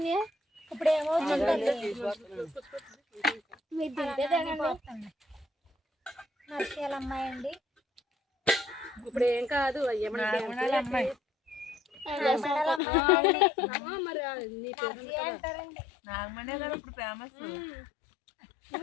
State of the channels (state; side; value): drops out; right; at 12.8 s